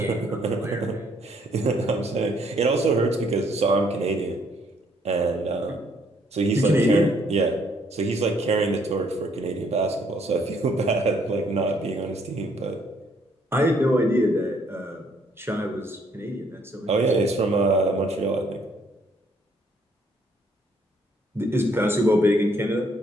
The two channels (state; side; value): normal; both; correlation 0.67